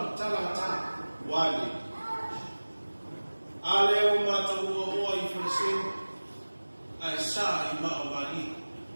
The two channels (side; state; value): both; inverted; correlation -1.00